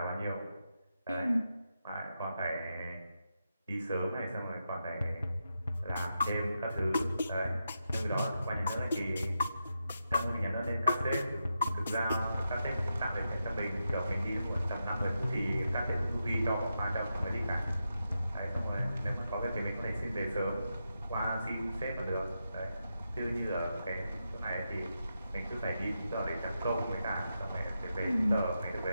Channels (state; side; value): inverted; both; correlation -0.86